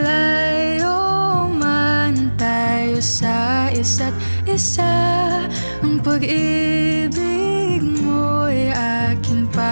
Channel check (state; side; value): inverted; both; correlation -1.00